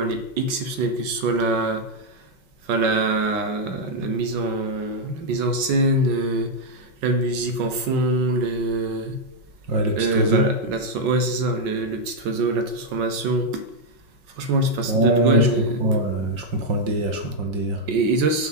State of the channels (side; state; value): left; late; 5.3 ms